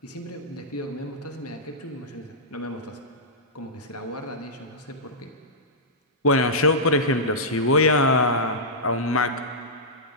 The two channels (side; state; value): both; normal; correlation -0.13